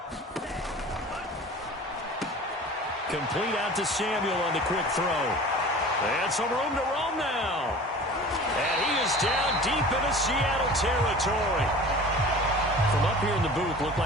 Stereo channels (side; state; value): both; normal; correlation 0.40